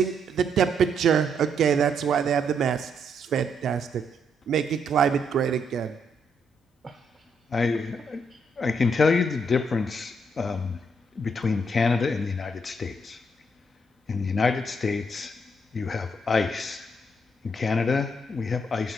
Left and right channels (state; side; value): normal; both; correlation 0.74